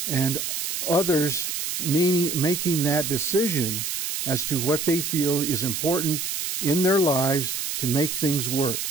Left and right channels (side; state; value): right; noise; hiss, 3 dB below the sound